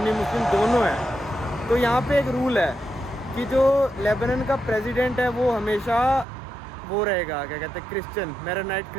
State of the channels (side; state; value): left; drops out; at 6.2 s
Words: मुस्लिम दोनों हैं। तो यहाँ पे एक रूल है कि जो लेबनान का प्रेसिडेंट है वो हमेशा वो रहेगा, क्या कहते हैं, क्रिश्चियन, मेरोनाइट